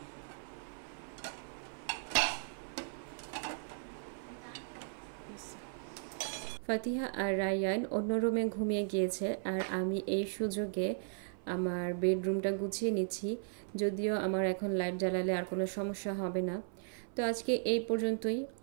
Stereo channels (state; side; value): silent; left; 53 dB below the other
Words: ফাতিহা আর রায়ান অন্য রুমে ঘুমিয়ে গিয়েছে, আর আমি এই সুযোগে আমার বেডরুমটা গুছিয়ে নিচ্ছি। যদিও আমার এখন লাইট জ্বালালে আর কোনো সমস্যা হবে না। তো আজকে এই পর্যন্তই।